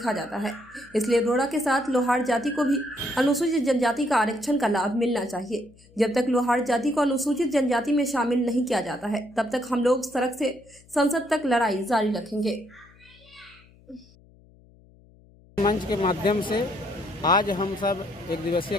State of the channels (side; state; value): left; noise; hum, 27 dB below the sound